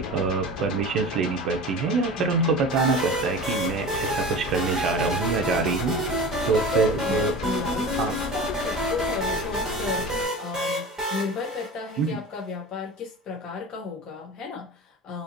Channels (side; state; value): both; normal; correlation 0.34